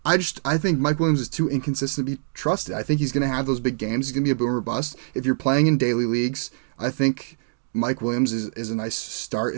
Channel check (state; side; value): silent; left; digital silence